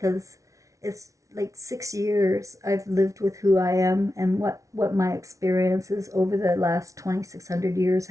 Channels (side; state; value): left; late; 0.16 ms